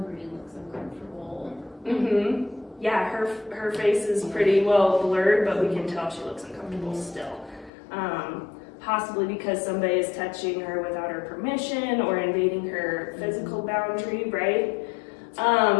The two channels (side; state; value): right; drops out; at 7.7 s